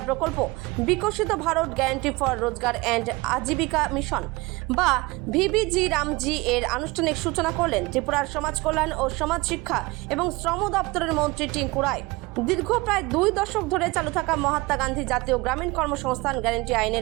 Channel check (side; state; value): left; quieter; 23.1 dB